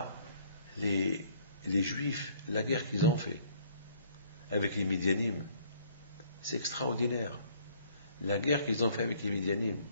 les Juifs, la guerre qu'ils ont fait avec les Midianim. C'est extraordinaire. La guerre qu'ils ont fait avec les Midianim.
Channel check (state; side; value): inverted; both; correlation -0.60